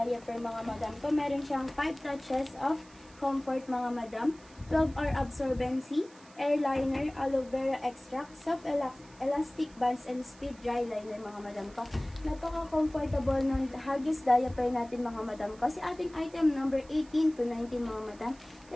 mga madam ko. Meron siyang 5 touches of comfort mga madam, 12-hour absorbency, airliner, aloe vera extract, soft elastic bands, and speed dry liner mga madam ko. Napaka-comfortable ng Huggies diaper natin mga madam ko. Si ating item number 18 to 19 mga madam.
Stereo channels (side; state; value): right; noise; hiss, 25 dB below the sound